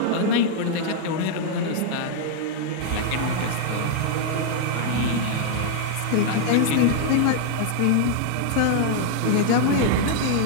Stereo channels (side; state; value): both; different; correlation -0.01